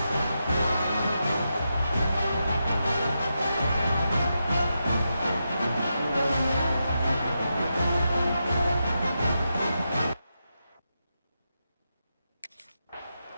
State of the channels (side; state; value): both; inverted; correlation -0.87